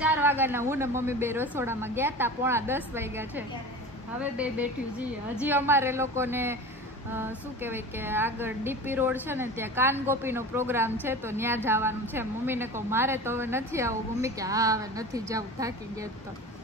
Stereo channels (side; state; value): both; normal; correlation 0.34